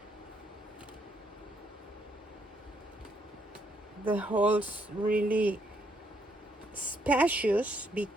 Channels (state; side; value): normal; both; correlation 0.73